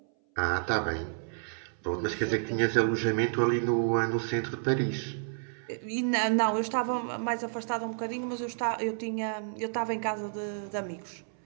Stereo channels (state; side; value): silent; left; 57 dB below the other